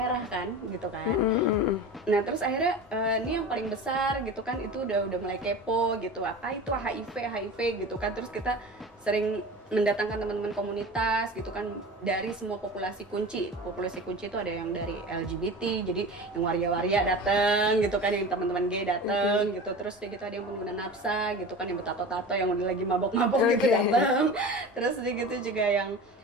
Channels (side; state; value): both; normal; correlation 0.33